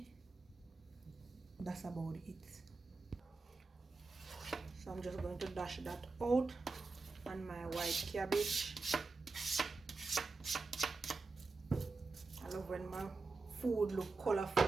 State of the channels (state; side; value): quieter; left; 3.9 dB